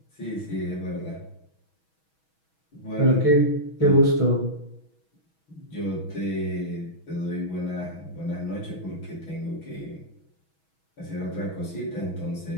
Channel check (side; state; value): right; late; 6.2 ms